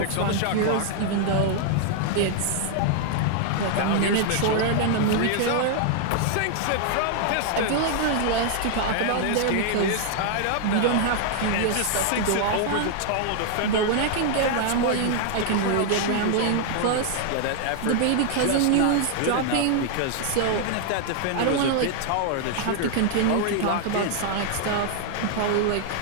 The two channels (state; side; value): different; both; correlation 0.00